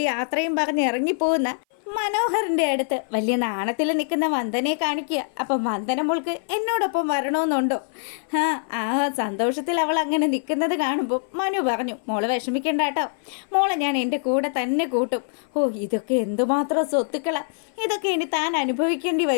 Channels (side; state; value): right; silent; 57 dB below the other